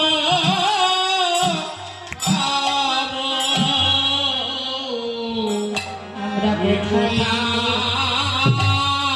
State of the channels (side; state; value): both; identical; correlation 1.00